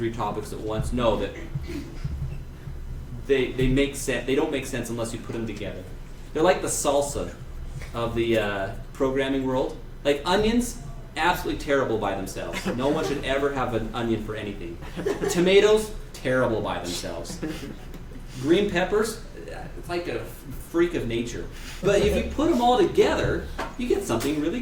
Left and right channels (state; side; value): identical; both; correlation 1.00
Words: topics at once. No, that they make sense. They don't make sense unless you put them together. They're like the salsa of the programming world. Like onions, absolutely terrible by themselves. No one should ever have an onion for anything. Tomatoes, terrible by themselves. Green peppers, it's like a freak of nature. But if you put them all together, you get something really